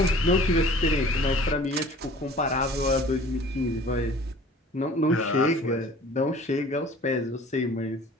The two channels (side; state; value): both; normal; correlation 0.47